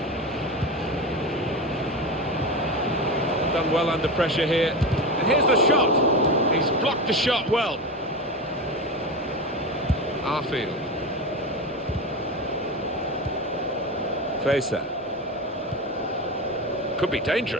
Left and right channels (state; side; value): normal; both; correlation 0.22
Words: Done well under pressure here. And here's the shot. He's blocked the shot well. Arfield. Facer. Could be